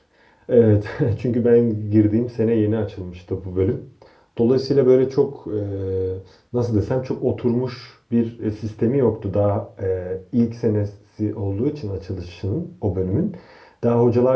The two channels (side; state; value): both; identical; correlation 1.00